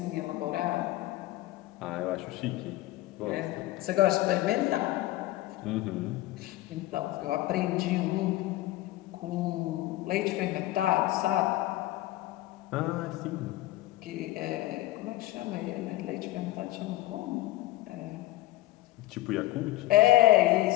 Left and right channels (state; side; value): quieter; right; 16.8 dB